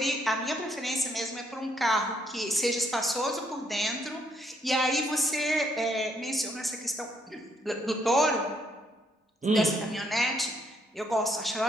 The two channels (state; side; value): normal; both; correlation 0.72